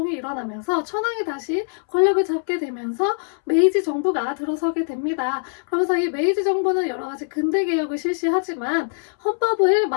일어나면서 천황이 다시 권력을 잡게 되면서 메이지 정부가 들어서게 됩니다. 그러면서 이 메이지 정부는 여러 가지 근대 개혁을 실시하지만 헌법을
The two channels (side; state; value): right; silent; 64 dB below the other